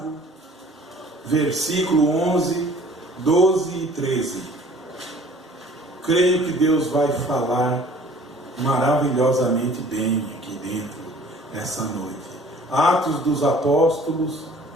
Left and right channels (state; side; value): normal; both; correlation 0.51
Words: versículo 11, 12 e 13. Creio que Deus vai falar maravilhosamente bem aqui dentro, essa noite. Atos dos Apóstolos,